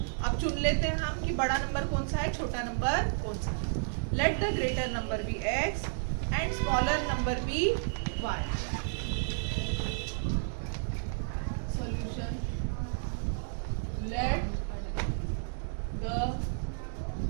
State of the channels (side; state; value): left; silent; digital silence